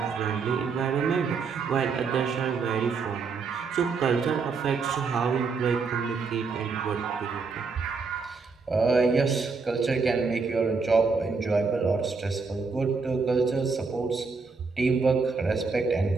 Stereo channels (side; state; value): left; quieter; 4.8 dB